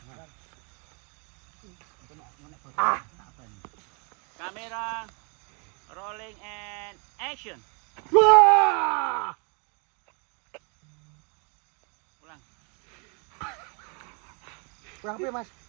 Kamera rolling and action. Wah! Ulang. Kurang piye Mas?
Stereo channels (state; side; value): quieter; left; 35.0 dB